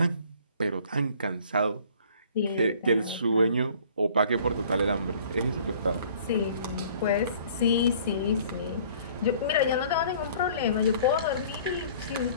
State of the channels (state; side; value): inverted; both; correlation -0.53